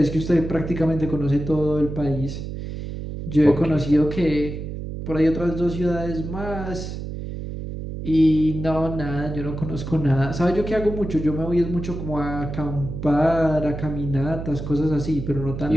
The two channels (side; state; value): right; noise; hum, 7 dB below the sound